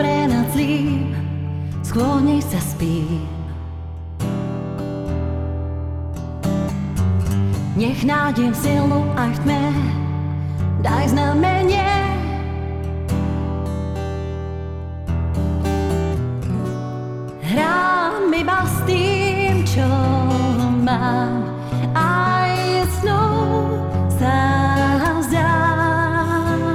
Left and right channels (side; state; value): both; identical; correlation 1.00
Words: nad zlým, sklonej sa spím. Nech nájdem silu aj v tme, daj znamenie. Hrám iba s tým, čo mám, aj snou sa vzdám.